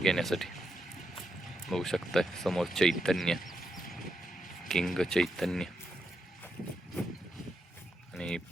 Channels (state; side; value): normal; both; correlation 0.84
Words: बघू शकताय समोर चैतन्य, किंग चैतन्य आणि